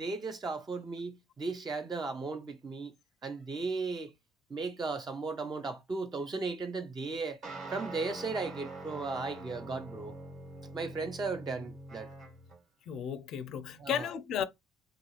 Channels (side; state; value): both; normal; correlation 0.68